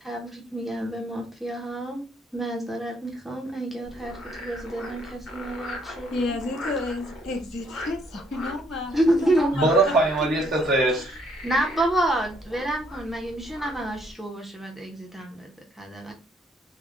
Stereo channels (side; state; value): both; normal; correlation 0.68